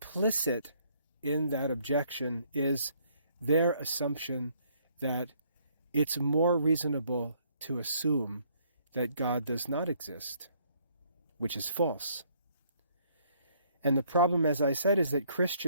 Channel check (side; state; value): both; inverted; correlation -0.65